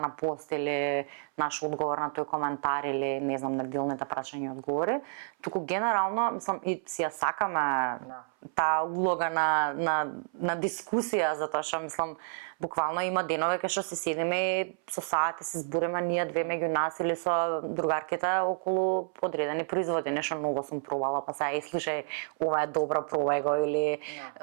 на пост или наш одговор на тој коментар или не знам неделните прашања и одговори, туку генерално мислам и си ја сакаме таа улога на дискусија, затоа што мислам буквално има денови кај што се седиме и со сати се збориме ние две меѓу нас или со другарките околу одредени производи, нешто многу сум пробала, па сега слушај, ова е добро, пробај го или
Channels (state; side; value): silent; left; 58 dB below the other